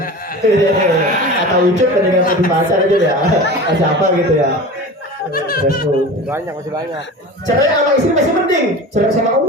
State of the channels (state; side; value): normal; both; correlation 0.33